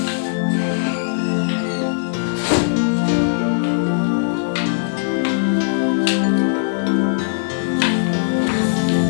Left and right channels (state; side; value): silent; right; digital silence